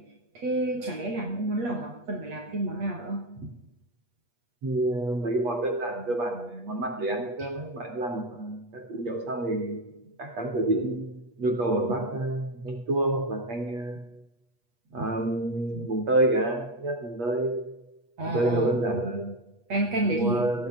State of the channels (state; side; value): late; left; 8.4 ms